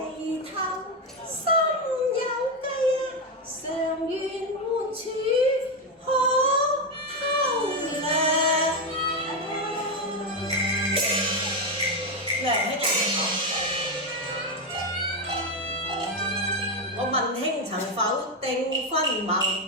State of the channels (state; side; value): normal; both; correlation 0.09